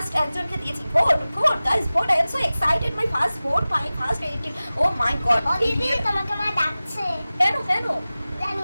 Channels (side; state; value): both; inverted; correlation -0.97